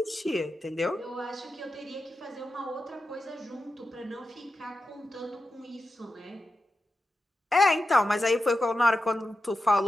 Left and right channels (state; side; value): normal; both; correlation 0.90